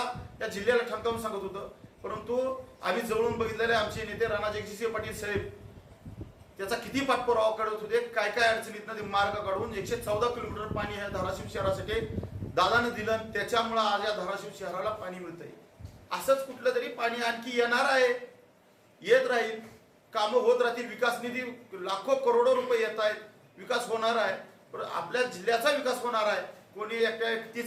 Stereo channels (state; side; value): identical; both; correlation 1.00